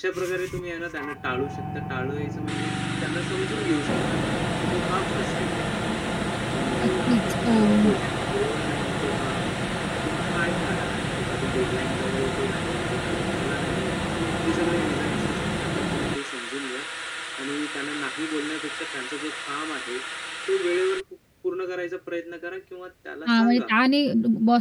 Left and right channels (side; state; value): both; identical; correlation 1.00